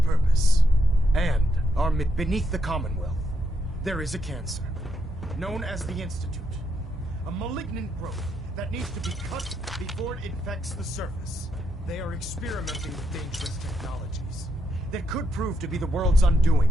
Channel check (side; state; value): both; normal; correlation 0.79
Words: and our beneath the Commonwealth. There is a cancer, known as the Institute. A malignant growth that needs to be cut before it infects the surface. They are experimenting with dangerous technologies that could prove to be the world's